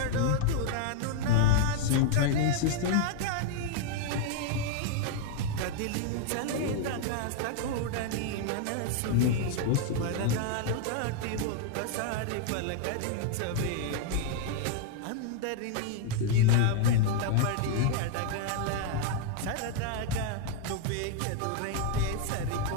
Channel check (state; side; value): different; both; correlation 0.00